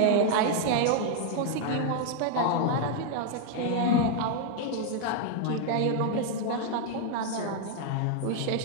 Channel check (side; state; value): both; different; correlation 0.00